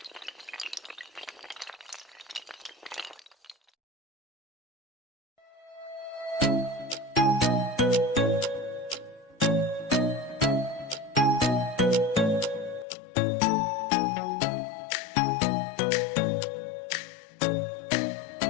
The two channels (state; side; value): drops out; right; at 12.9 s